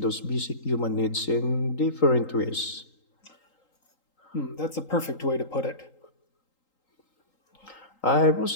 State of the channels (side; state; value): right; late; 3.8 ms